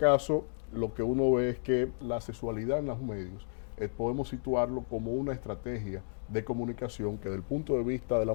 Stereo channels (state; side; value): silent; right; digital silence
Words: lo que uno ve es que la sexualidad en los medios podemos situarlo como una estrategia de comunicación que desde el punto de vista de la